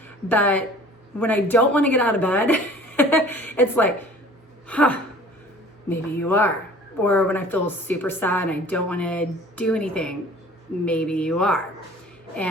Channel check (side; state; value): both; normal; correlation 0.47